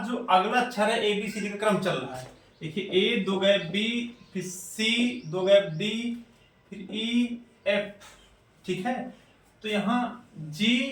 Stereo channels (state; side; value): identical; both; correlation 1.00